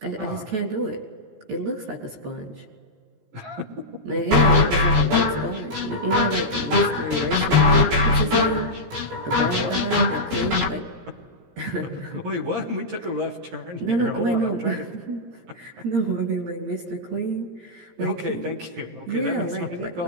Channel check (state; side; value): late; left; 17 ms